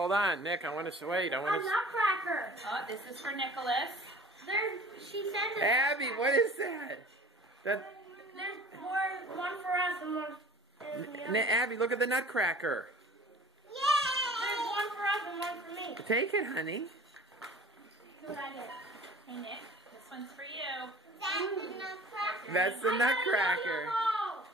on. Nick, I want to wait. A nutcracker. Oh, this is for Nicholas. She said that. Abby, what is that? There's one for us and one for the other. Abby, look at the nutcracker. There's one for us and one for me. Take it, honey. See what I get. Hey, Nick, this one's for you. That's the nutcracker.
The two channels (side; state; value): both; normal; correlation 0.45